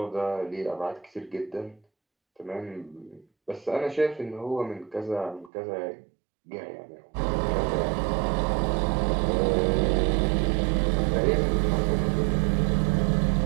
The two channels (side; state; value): left; drops out; at 5.5 s